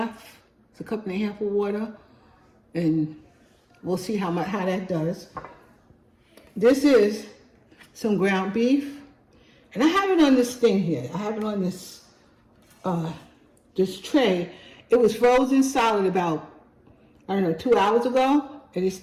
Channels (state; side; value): identical; both; correlation 1.00